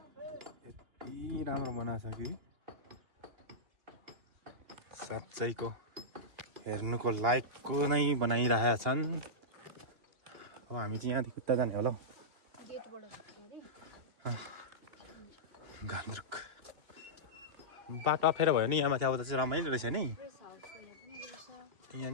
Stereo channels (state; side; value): late; left; 2.9 ms